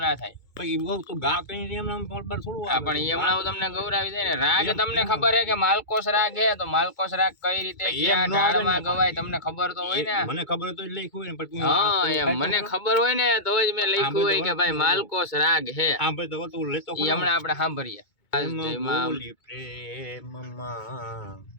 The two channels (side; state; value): right; late; 2.2 ms